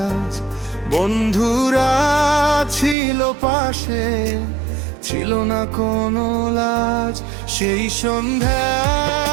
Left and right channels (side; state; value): left; drops out; at 3.0 s